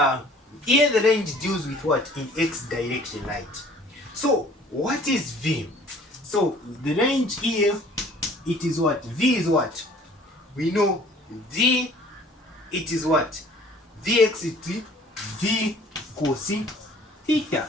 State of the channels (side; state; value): both; normal; correlation 0.53